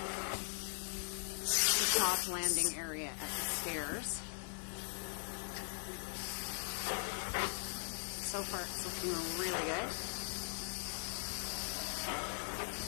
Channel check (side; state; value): right; silent; 51 dB below the other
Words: The top landing area at the stairs. So far it's looking really good.